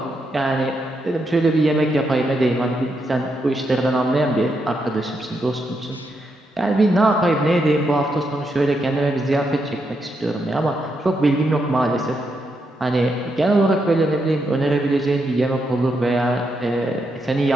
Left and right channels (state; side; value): normal; both; correlation 0.81